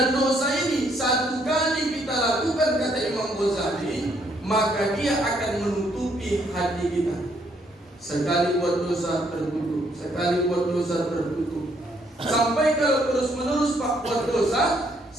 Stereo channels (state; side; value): normal; both; correlation 0.70